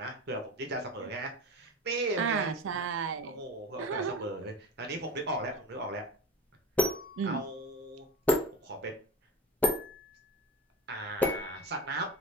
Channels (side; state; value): both; normal; correlation 0.31